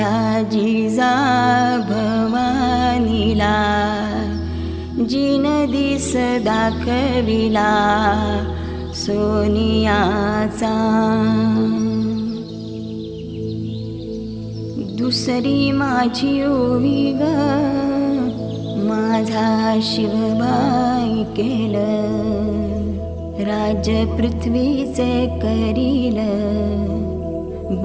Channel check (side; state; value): both; identical; correlation 1.00